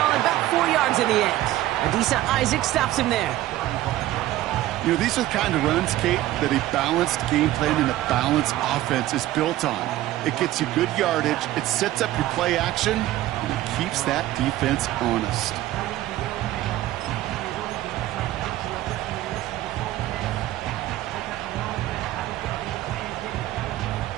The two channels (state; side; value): quieter; left; 15.1 dB